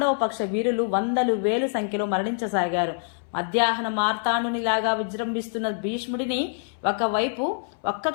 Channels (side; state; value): right; silent; 61 dB below the other